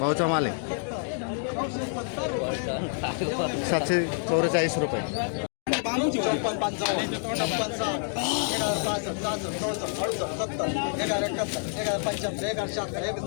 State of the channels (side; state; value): right; silent; 59 dB below the other